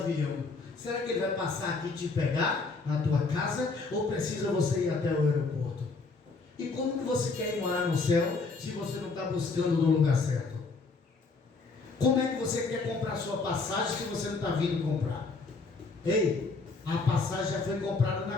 será que ele vai passar aqui e te pegar na tua casa? Ou precisa você ir até o aeroporto? E como que você quer ir morar no céu se você não está buscando no lugar certo? Como é que você quer comprar sua passagem se você não está vindo comprar? Ei, a passagem já foi comprada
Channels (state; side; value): quieter; right; 4.0 dB